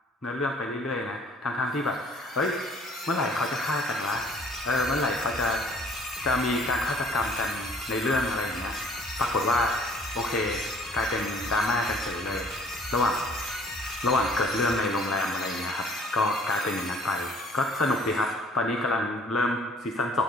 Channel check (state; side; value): normal; both; correlation 0.56